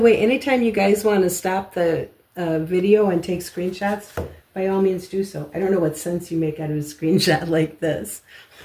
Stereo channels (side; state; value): both; identical; correlation 1.00